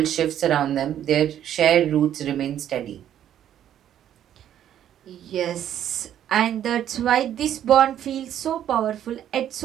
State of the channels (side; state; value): left; quieter; 10.7 dB